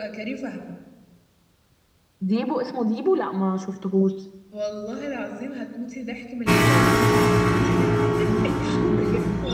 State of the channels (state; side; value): identical; both; correlation 1.00